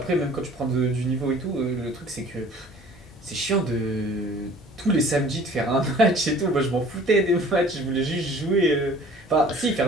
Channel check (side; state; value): both; normal; correlation 0.49